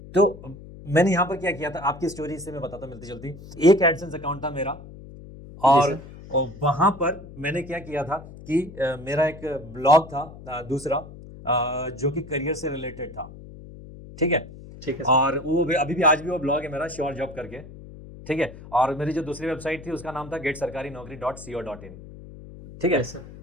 तो मैंने यहाँ पर क्या किया था, आपकी स्टोरी से मैं बताता मिलती जुलती। एक एडसेंस अकाउंट था मेरा और वहाँ पर मैंने क्या किया था कि मेरा एक ब्लॉग था दूसरा, जो कि करियर से रिलेटेड था, ठीक है। ठीक है सर। और वो अभी भी आज भी वो ब्लॉग है मेरा, श्योर जॉब करके, ठीक है। और मेरी जो दूसरी वेबसाइट थी उसका नाम था GetSarkariNaukri.co.in, ठीक है। Yes, sir.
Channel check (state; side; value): noise; left; hum, 16 dB below the sound